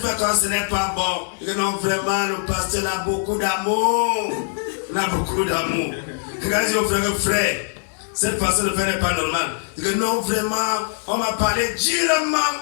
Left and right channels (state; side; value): silent; right; digital silence